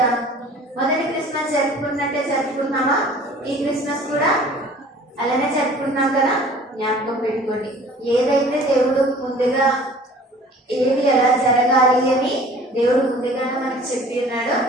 మొదటి క్రిస్మస్ జరుపుకున్నట్టే జరుపుకున్నామా? ఈ క్రిస్మస్ కూడా అలానే జరుపుకున్నాం కదా. జ్ఞాపకం పెట్టుకోండి, ఏదైతే దేవుడు ముందుగా ఏది ఎలా జరగాలి అని దేవుడు ముందుగానే మనకి చెప్పి ఉన్నాడో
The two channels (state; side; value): normal; both; correlation 0.48